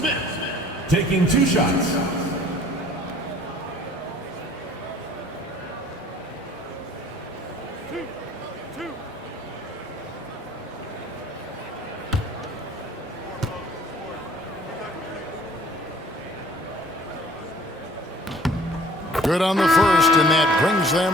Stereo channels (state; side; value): normal; both; correlation 0.53